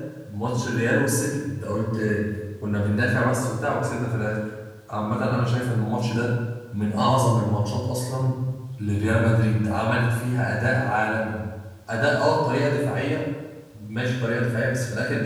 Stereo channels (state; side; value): identical; both; correlation 1.00